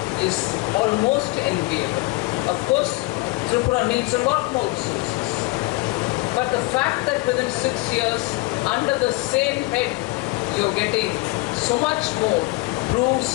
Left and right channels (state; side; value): quieter; right; 22.3 dB